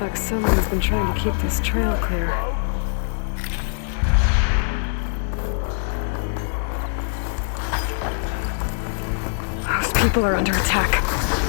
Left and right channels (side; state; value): right; silent; 64 dB below the other